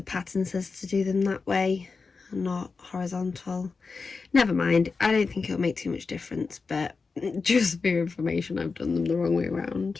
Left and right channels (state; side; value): quieter; right; 4.6 dB